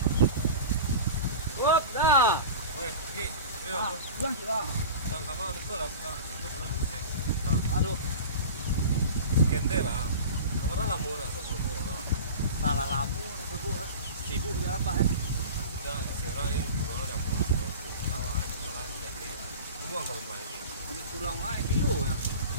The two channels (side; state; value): both; inverted; correlation -0.33